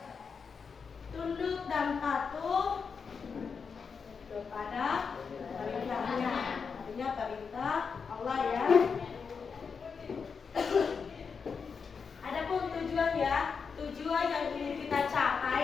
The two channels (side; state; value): right; quieter; 5.7 dB